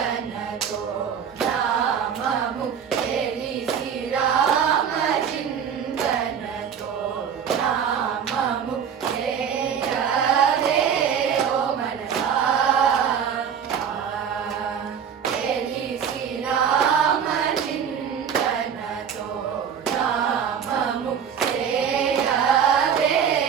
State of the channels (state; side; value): quieter; left; 7.8 dB